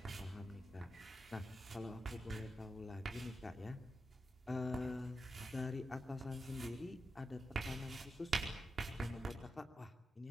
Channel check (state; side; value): normal; both; correlation 0.89